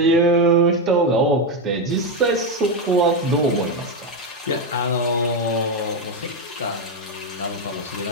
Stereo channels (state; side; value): normal; both; correlation 0.08